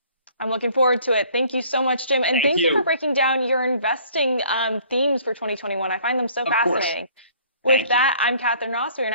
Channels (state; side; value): inverted; both; correlation -0.57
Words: I'm looking forward to it. Thank you so much, Jim. And thank you for breaking down your investing themes for 2021. I find them so fascinating. With that, I'm Katherine Ross. We are